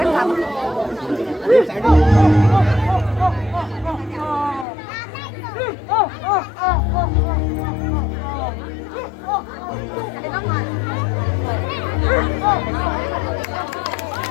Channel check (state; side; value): drops out; right; at 4.7 s